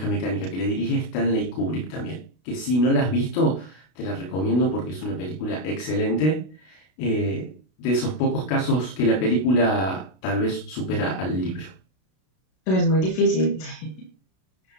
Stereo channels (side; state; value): right; late; 32 ms